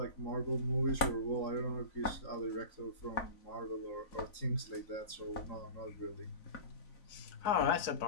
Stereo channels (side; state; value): right; late; 4.0 ms